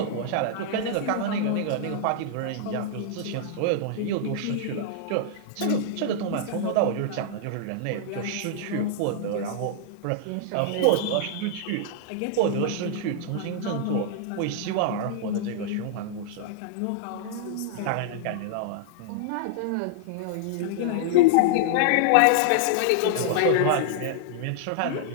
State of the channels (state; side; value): different; both; correlation -0.01